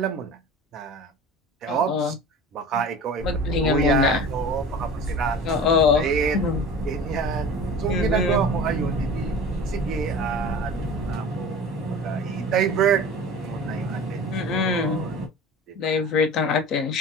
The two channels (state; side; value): normal; both; correlation 0.37